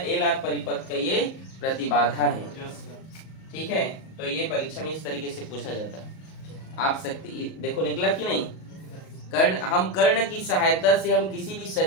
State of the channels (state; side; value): late; right; 38 ms